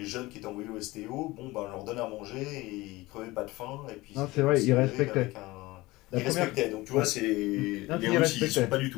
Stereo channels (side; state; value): right; quieter; 20.3 dB